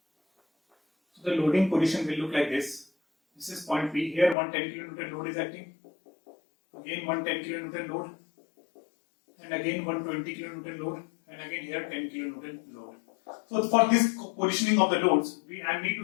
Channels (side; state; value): right; drops out; at 4.4 s